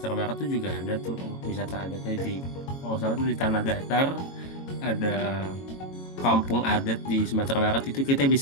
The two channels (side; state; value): right; late; 22 ms